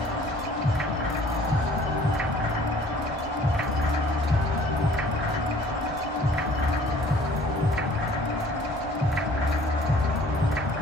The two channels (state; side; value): normal; both; correlation 0.53